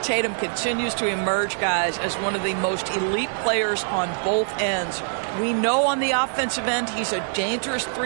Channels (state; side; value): silent; left; digital silence